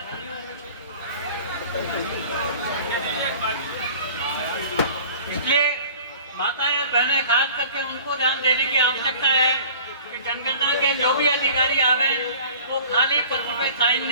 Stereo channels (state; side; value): inverted; both; correlation -0.45